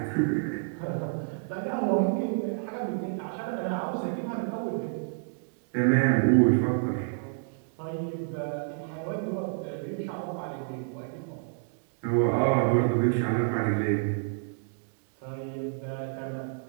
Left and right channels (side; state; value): left; silent; digital silence